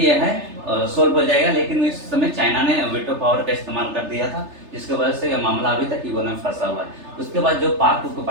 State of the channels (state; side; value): late; left; 3.3 ms